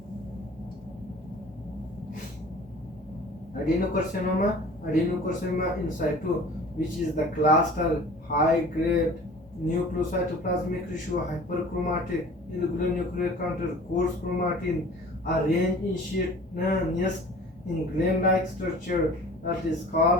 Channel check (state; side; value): normal; both; correlation 0.45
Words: Adenocarcinoma in situ, which is the cluster, high-grade nucleocytoplasmic ratio, hyperchromatic, irregular nuclear counter, coarse chromatin, arranged in sheet nest in gland-like structure, that is